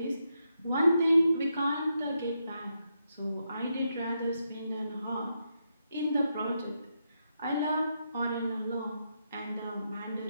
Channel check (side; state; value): both; inverted; correlation -0.83